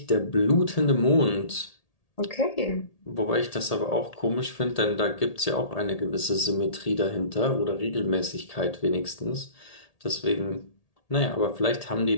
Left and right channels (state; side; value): late; right; 1.8 ms